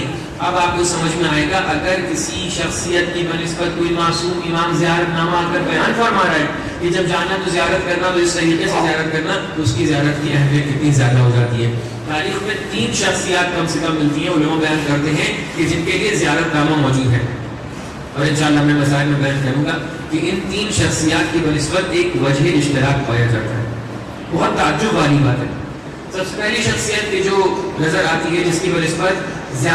اب آپ کو سمجھ میں آئے گا اگر کسی شخصیت کی بنسبت کوئی معصوم امام زیارت نامہ اگر بیان فرما رہا ہے کہ جب جانا تو زیارت کرنا, تو اس طریقے سے زیارت کرنا, تو اس کی زیارت کی اہمیت کتنی زیادہ ہو جاتی ہے. تاریخ میں 3 شخصیات کم سے کم ملتی ہیں, علماء بیان کرتے ہیں کہ جن کے لیے زیارت نامہ موجود ہے. اور انشاءاللہ میں مسائل میں بیان کروں گا کہ ان 3 شخصیات کی بنسبت ایک وجہ اشتراک پایا جاتا ہے. بہت تعجب والی بات ہے. سب سے پہلی شخصیت کی جو نظر آتی ہے جس کی بنسبت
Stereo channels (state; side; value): identical; both; correlation 1.00